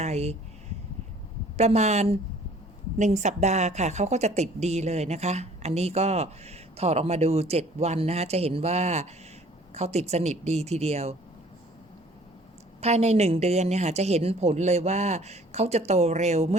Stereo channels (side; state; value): both; normal; correlation 0.53